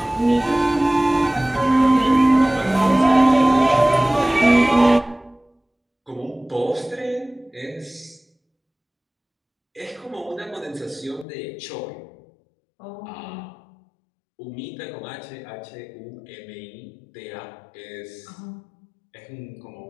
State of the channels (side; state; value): right; drops out; at 11.2 s